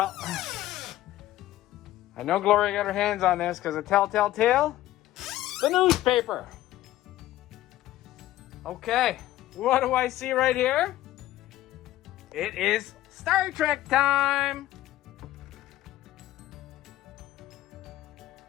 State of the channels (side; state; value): right; quieter; 14.8 dB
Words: I know Gloria got her hands on this because of telltale tale. The newspaper. Okay, what do I see right here? It is Star Trek time.